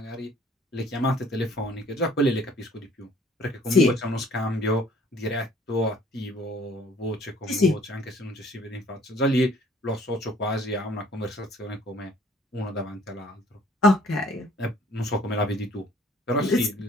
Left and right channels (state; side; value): normal; both; correlation 0.56